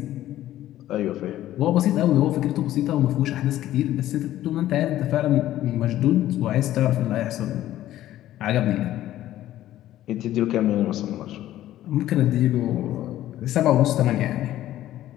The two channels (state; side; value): quieter; right; 13.6 dB